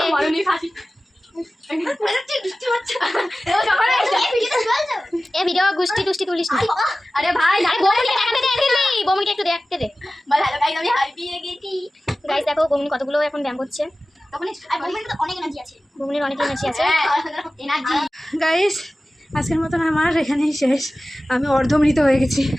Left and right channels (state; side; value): normal; both; correlation 0.96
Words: এ ভিডিও গুষ্টি টুষ্টি তুলিস না। আরে ভাই বমুনকে দেখাতে দে, দিল্লি বমুনকে একটু দেখতে দে। বল হ্যালো গাইস, আমি হারিয়ে গেছি। গাইস দেখো বমুন কতগুলো এখন ব্যায়াম করছে। বমুনের অনেক এনার্জি আছে, বমুনের অনেক এনার্জি আছে। এনার্জি গাইস আজকের মতন আমার এখানেই শেষ। আমি অর্ধমৃত হয়ে গেছি।